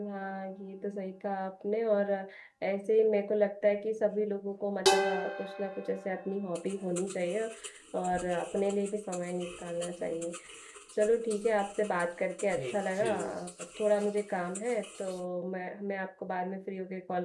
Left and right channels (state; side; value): identical; both; correlation 1.00